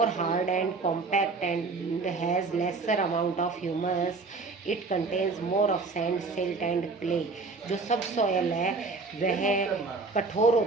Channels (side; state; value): left; quieter; 4.0 dB